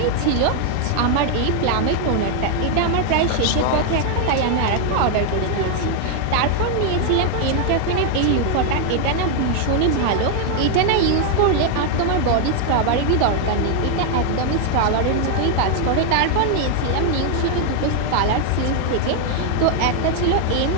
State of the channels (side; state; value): both; different; correlation 0.00